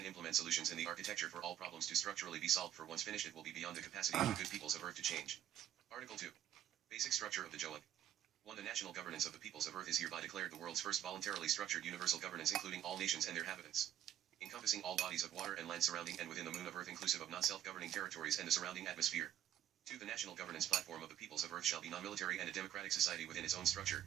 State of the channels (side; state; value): left; quieter; 10.7 dB